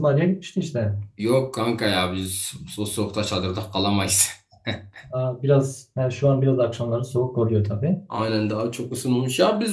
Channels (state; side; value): identical; both; correlation 1.00